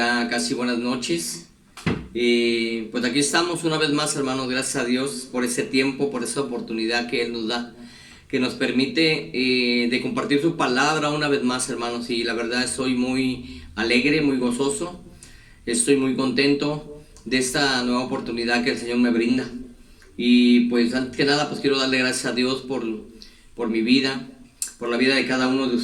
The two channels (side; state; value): both; identical; correlation 1.00